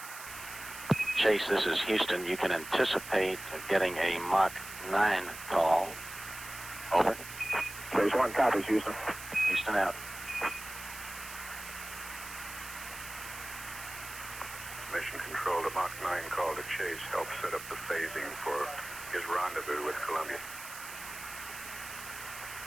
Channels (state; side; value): noise; right; hiss, 12 dB below the sound